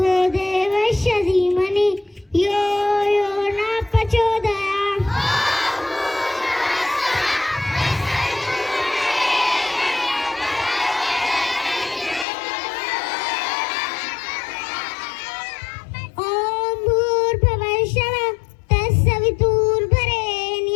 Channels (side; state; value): right; drops out; at 12.2 s